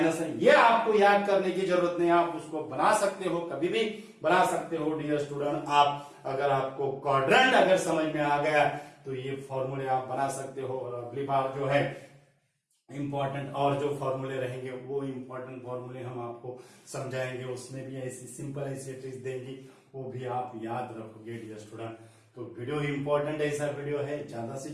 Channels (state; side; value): identical; both; correlation 1.00